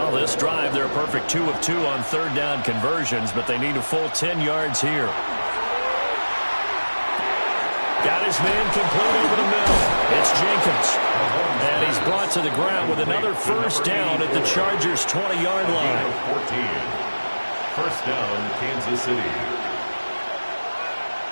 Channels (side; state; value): both; inverted; correlation -1.00